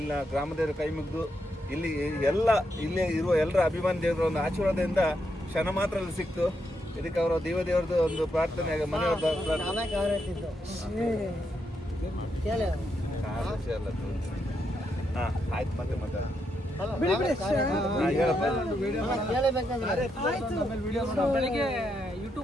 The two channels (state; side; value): normal; both; correlation 0.81